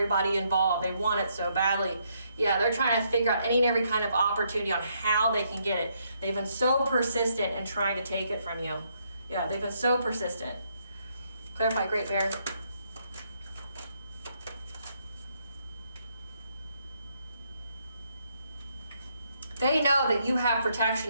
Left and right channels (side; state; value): both; inverted; correlation -0.74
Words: involved. They want it so badly. Yeah, they're trying to figure out any and every kind of opportunity on how they can get it. They've been so persistent in trying to take it from you. Yeah, they've been so persistent. Clarify, Great Bear. They know that you have